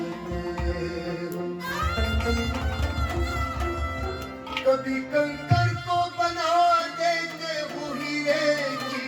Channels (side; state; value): both; identical; correlation 1.00